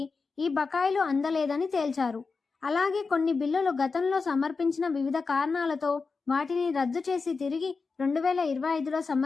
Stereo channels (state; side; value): quieter; right; 4.5 dB